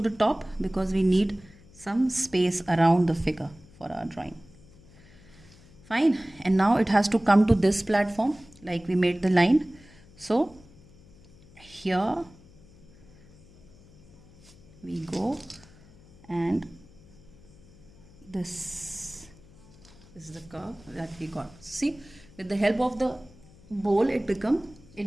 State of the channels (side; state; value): left; noise; hum, 24 dB below the sound